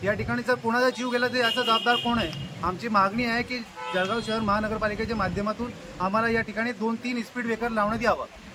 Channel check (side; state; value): both; identical; correlation 1.00